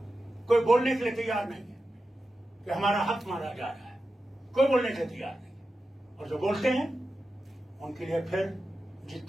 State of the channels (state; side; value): normal; both; correlation 0.92